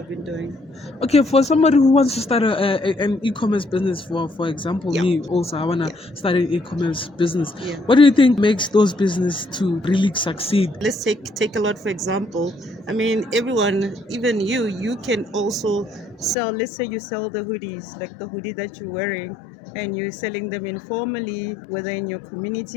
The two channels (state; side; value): drops out; right; at 16.4 s